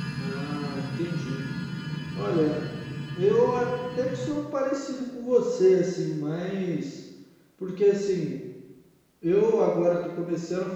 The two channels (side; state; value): both; identical; correlation 1.00